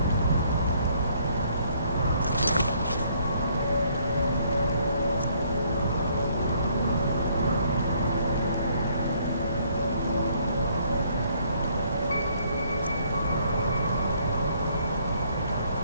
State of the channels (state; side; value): inverted; both; correlation -0.66